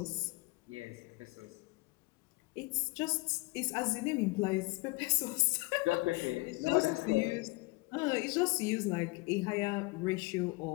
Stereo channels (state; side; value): quieter; right; 24.6 dB